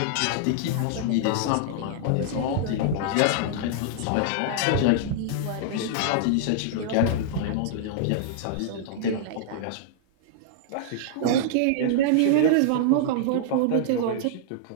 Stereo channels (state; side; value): different; both; correlation -0.01